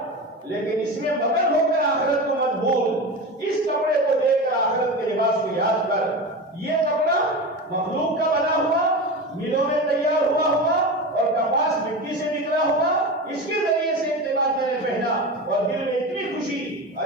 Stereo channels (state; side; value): normal; both; correlation 0.25